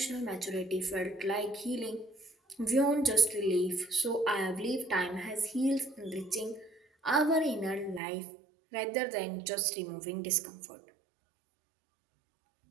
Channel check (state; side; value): drops out; left; at 8.0 s